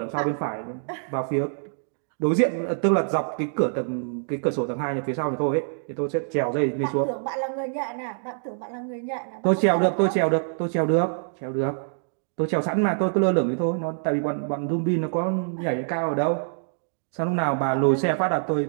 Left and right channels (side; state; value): left; silent; digital silence